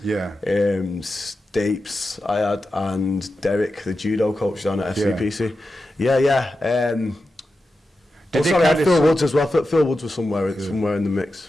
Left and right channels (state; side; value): normal; both; correlation 0.91